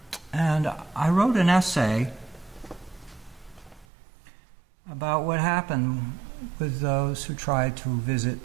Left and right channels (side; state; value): left; drops out; at 3.9 s